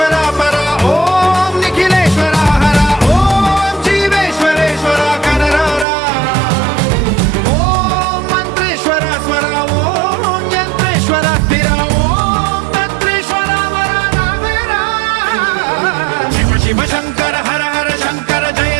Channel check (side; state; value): left; drops out; at 5.9 s